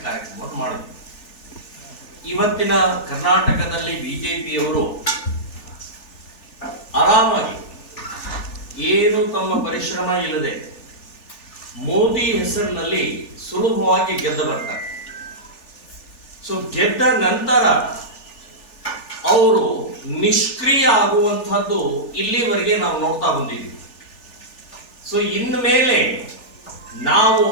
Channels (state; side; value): late; right; 3.4 ms